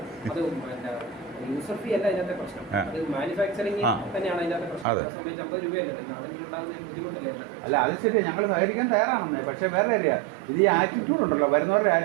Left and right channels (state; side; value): drops out; left; at 4.9 s